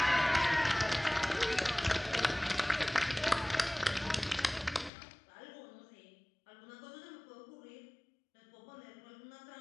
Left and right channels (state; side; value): drops out; right; at 4.9 s